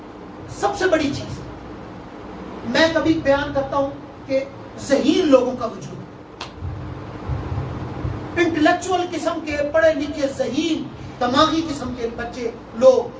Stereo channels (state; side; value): identical; both; correlation 1.00